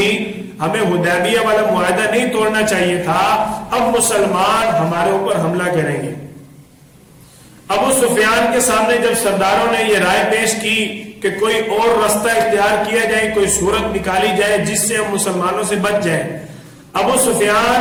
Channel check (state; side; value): identical; both; correlation 1.00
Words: ہمیں حدیبیہ والا معاہدہ نہیں توڑنا چاہیے تھا، اب مسلمان ہمارے اوپر حملہ کریں گے۔ ابو سفیان کے سامنے جب سرداروں نے یہ رائے پیش کی کہ کوئی اور راستہ اختیار کیا جائے، کوئی صورت نکالی جائے جس سے ہم مسلمانوں سے بچ جائیں، ابو